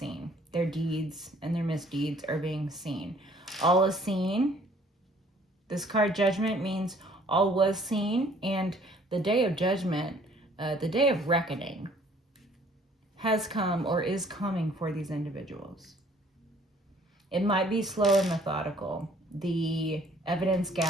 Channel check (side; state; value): both; normal; correlation 0.58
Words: Their deeds and their misdeeds are being seen. All is seen. This card Judgment means all was seen, and the day of judgment, the day of reckoning, has come or is coming for these individuals. It might be slow and methodical. The evidence